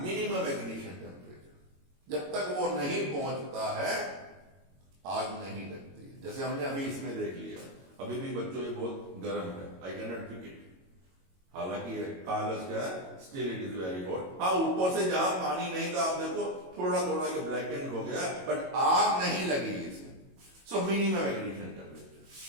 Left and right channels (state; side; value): late; left; 22 ms